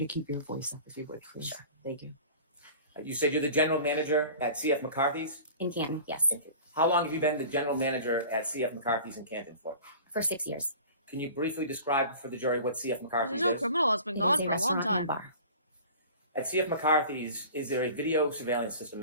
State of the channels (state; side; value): inverted; both; correlation -0.41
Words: keep your voice up if you would, please. Sure. Thank you. You said you're the general manager at CF McCarthy's? In Canton, yes. Thank you. How long have you been the general manager at CF McCarthy's in Canton for? For 6 years. Can you briefly describe for the jury what CF McCarthy's No is? criminal has been It gone is for a long restaurant and time. bar. At CF McCarthy's, is there a video surveillance system